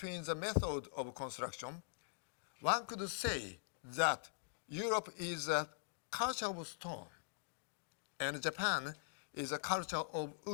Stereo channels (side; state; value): right; silent; digital silence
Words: the method of construction. One could say that Europe is a culture of stone, and Japan is a culture of